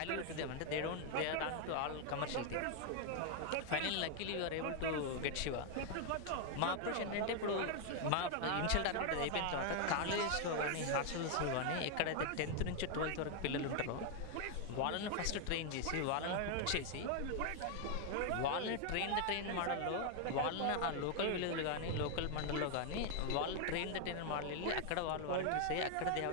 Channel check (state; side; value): different; both; correlation 0.00